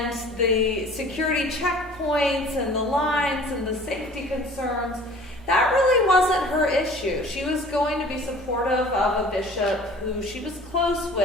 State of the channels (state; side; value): normal; both; correlation 0.47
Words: the security checkpoints and the lines and the safety concerns. That really wasn't her issue. She was going to be supportive of a bishop who she was close